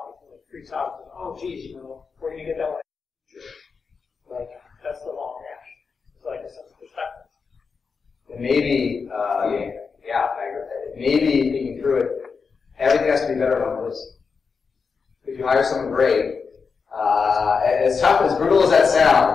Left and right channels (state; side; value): quieter; right; 5.3 dB